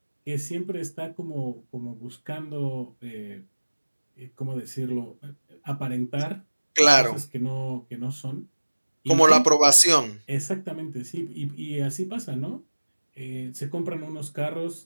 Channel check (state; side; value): inverted; both; correlation -1.00